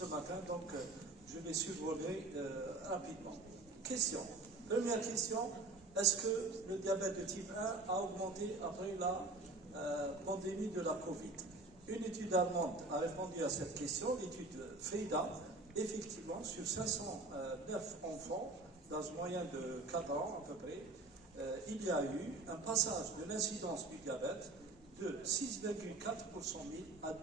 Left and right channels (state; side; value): quieter; left; 3.1 dB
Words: matin, donc je vais survoler rapidement. Question. Première question, est-ce que le diabète de type 1 a augmenté après la pandémie de la Covid? Une étude allemande a répondu à cette question, l'étude FEIDA. Effectivement, sur 509 enfants, dans une moyenne de 4 ans à peu près, il y a eu un passage de l'incidence du diabète de 6,4 pour 100 000 à